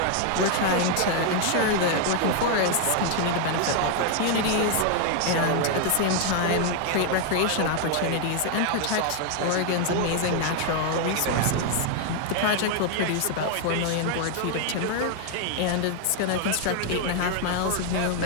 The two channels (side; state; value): both; different; correlation 0.00